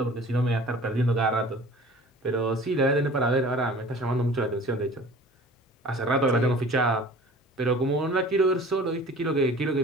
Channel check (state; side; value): normal; both; correlation 0.45